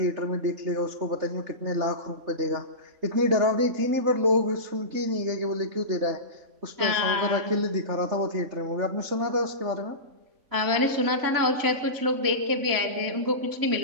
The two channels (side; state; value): left; late; 3.5 ms